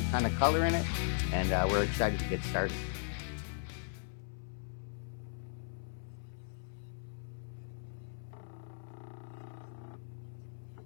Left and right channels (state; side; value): silent; right; 53 dB below the other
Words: ton of color in it, and we're excited to get started. So this is the opal we're cutting today, and it's